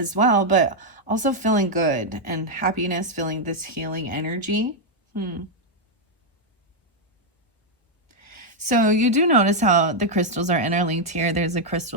well, but also feeling good and happiness, feeling this healing energy. So you do notice how the crystals are interlinked here. There's a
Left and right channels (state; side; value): normal; both; correlation -0.01